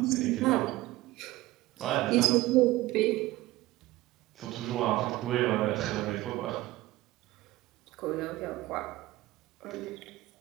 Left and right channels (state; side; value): quieter; left; 17.9 dB